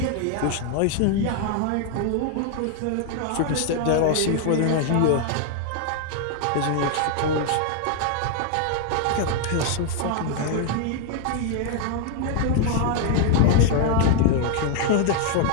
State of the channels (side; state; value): both; different; correlation 0.00